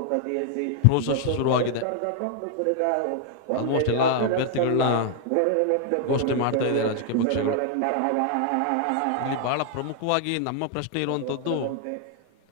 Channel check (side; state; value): both; different; correlation 0.00